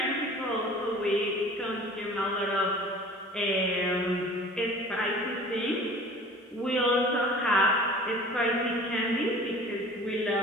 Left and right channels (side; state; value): both; normal; correlation 0.45